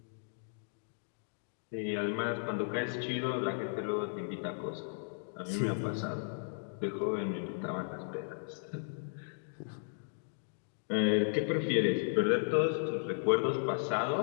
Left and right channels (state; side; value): silent; right; digital silence